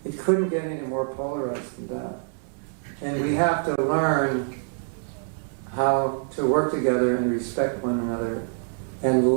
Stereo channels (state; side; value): silent; left; digital silence